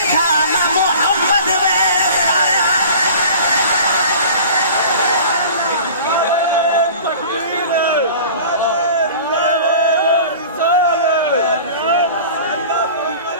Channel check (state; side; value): inverted; both; correlation -0.41